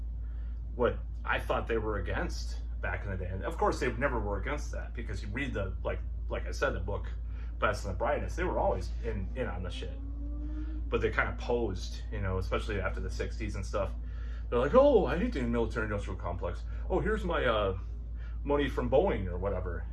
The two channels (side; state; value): both; identical; correlation 1.00